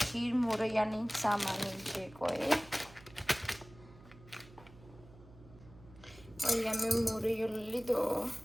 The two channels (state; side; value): noise; right; hum, 21 dB below the sound